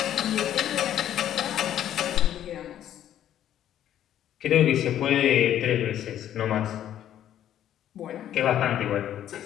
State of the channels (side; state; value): right; quieter; 11.1 dB